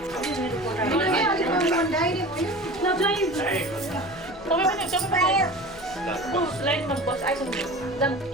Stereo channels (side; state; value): both; normal; correlation 0.36